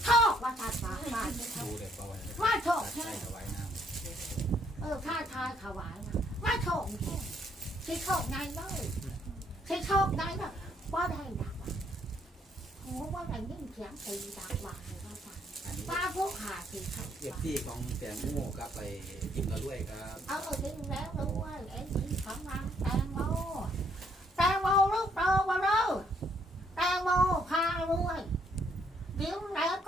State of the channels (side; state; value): both; normal; correlation 0.69